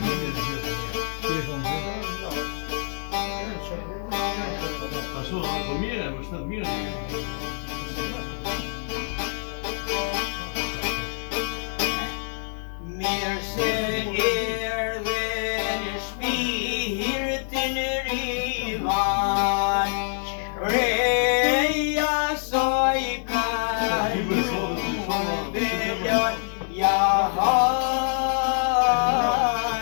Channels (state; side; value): silent; right; 61 dB below the other